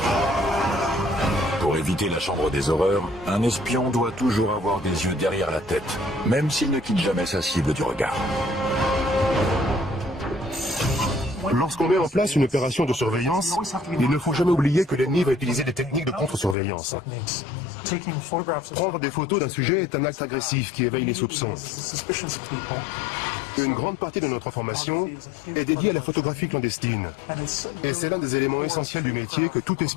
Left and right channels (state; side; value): drops out; right; at 16.6 s